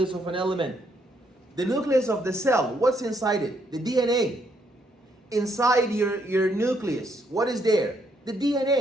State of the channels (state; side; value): normal; both; correlation 0.72